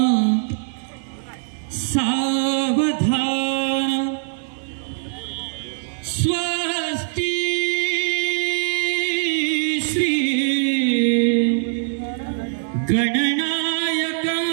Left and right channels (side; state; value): left; silent; digital silence